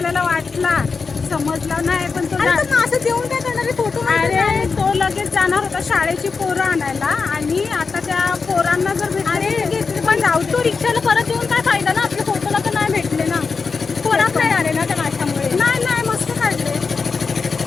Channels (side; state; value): right; quieter; 4.8 dB